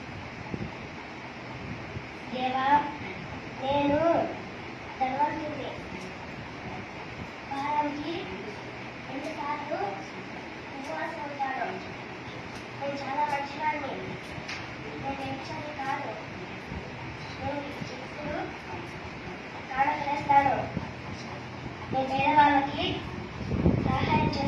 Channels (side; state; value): both; identical; correlation 1.00